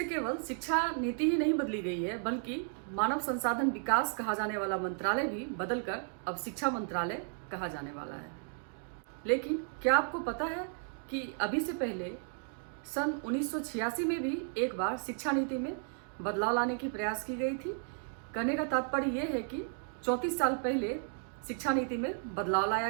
केवल शिक्षा नीति ही नहीं बदली गई है, बल्कि मानव संसाधन विकास कहा जाने वाला मंत्रालय भी बदलकर अब शिक्षा मंत्रालय कहा जाने वाला है। लेकिन क्या आपको पता है कि अभी से पहले सन 1986 में भी एक बार शिक्षा नीति में बदलाव लाने की प्रयास की गई थी। कहने का तात्पर्य यह है कि 34 साल पहले शिक्षा नीति में बदलाव लाया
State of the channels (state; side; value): silent; left; 55 dB below the other